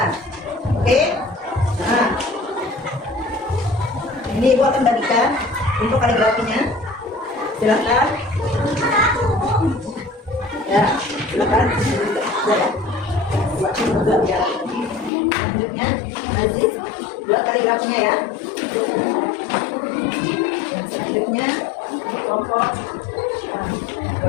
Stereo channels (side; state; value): right; drops out; at 15.1 s